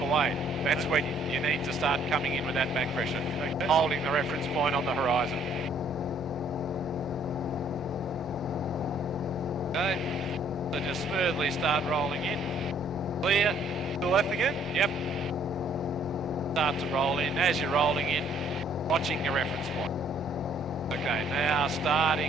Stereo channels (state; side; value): normal; both; correlation 0.63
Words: That's when you need to start coming in with that back pressure, holding the reference point on the horizon. Okay, so just smoothly start rolling in. Clear. To the left again? Yep. Start to roll in. As you're rolling in, watching your reference point. Okay, now